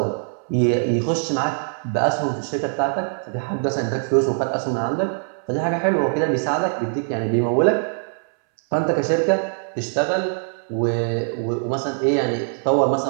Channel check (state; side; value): silent; left; 64 dB below the other